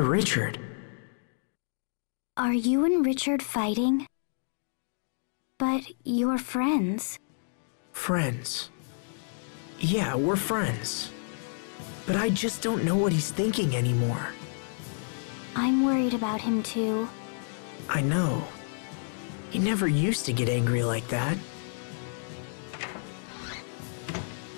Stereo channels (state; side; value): silent; right; digital silence